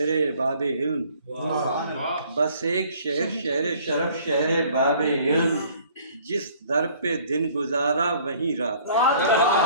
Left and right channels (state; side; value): inverted; both; correlation -0.55